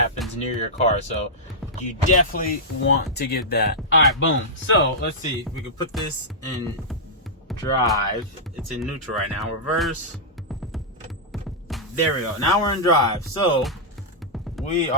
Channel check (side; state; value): both; normal; correlation -0.10